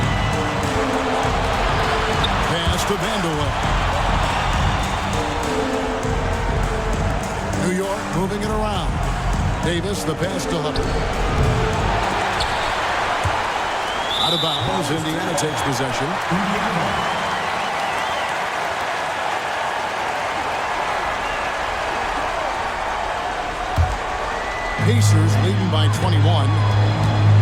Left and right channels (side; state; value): both; identical; correlation 1.00